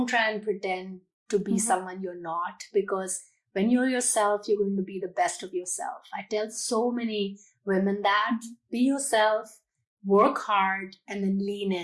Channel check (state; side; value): identical; both; correlation 1.00